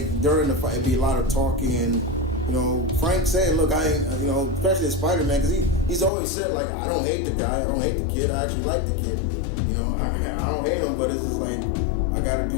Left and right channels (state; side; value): drops out; right; at 6.1 s